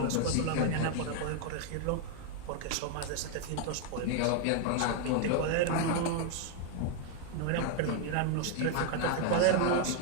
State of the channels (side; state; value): both; different; correlation 0.00